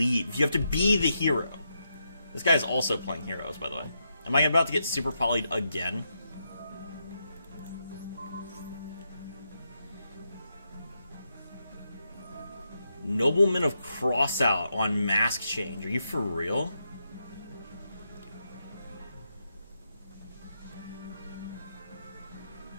You have to be the hero. This guy's also playing heroes, by the way. Am I about to get super polyed again? Nobleman of Crossout on Mask Change. Are you for real?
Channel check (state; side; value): inverted; both; correlation -0.83